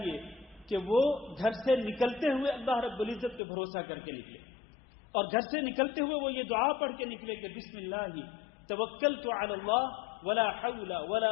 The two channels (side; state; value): right; drops out; at 3.4 s